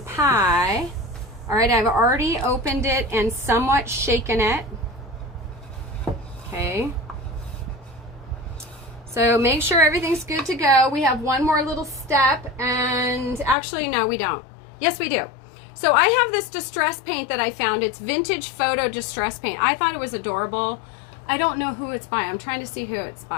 pie. All right, I've already opened it and somewhat shaken it. Okay. So make sure everything's good to go. We have one more little step, and actually, no, we don't. Yes, we do. So I have this distress paint that I found. It's vintage photo distress paint. I thought it was adorable. I don't know who it's by. I'm trying to see who it's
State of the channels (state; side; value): drops out; right; at 13.6 s